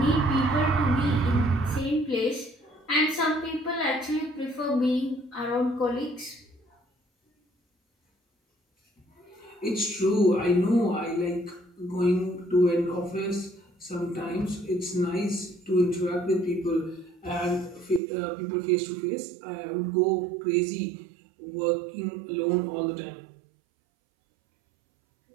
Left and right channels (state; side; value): drops out; left; at 18.0 s